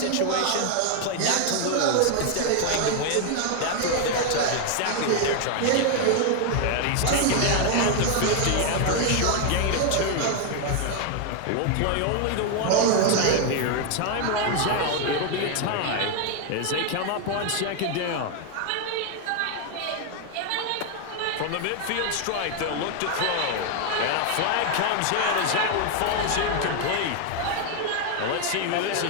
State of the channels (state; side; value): different; both; correlation 0.01